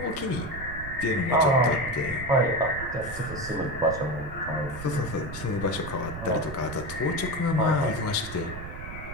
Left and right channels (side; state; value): right; noise; rumble, 10 dB below the sound